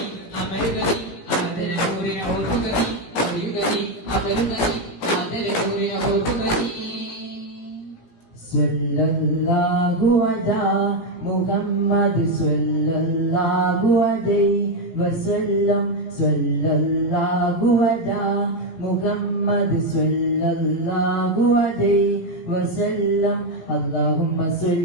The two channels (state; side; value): late; right; 17 ms